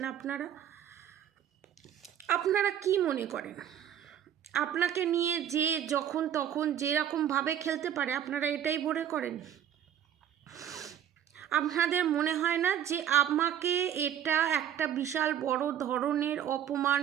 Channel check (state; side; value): quieter; left; 10.1 dB